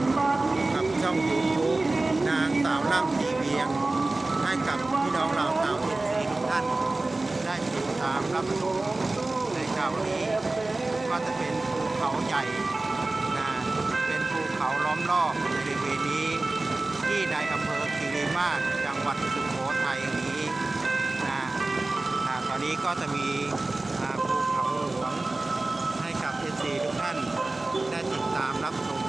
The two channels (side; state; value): left; quieter; 3.1 dB